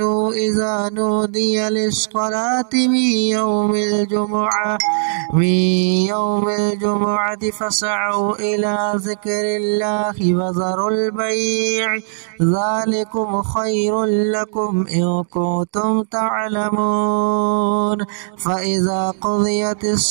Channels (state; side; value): silent; left; digital silence